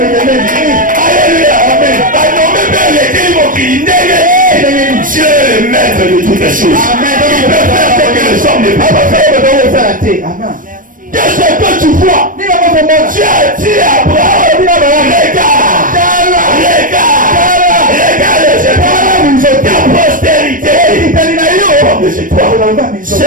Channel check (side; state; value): left; late; 0.39 ms